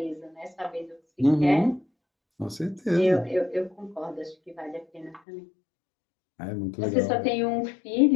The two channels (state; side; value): drops out; right; at 5.2 s